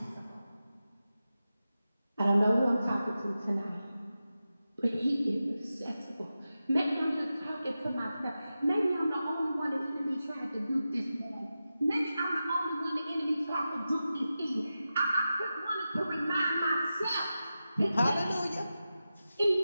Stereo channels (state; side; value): inverted; both; correlation -0.92